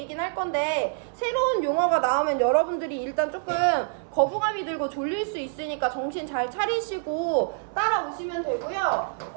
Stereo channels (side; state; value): left; silent; 57 dB below the other